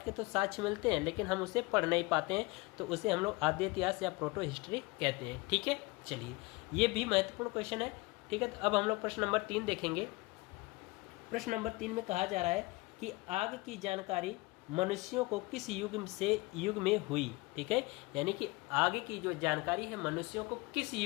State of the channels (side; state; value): right; quieter; 24.0 dB